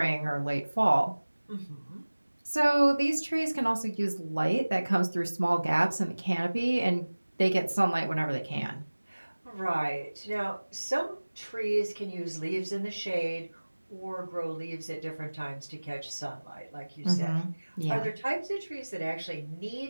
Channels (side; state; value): both; inverted; correlation -1.00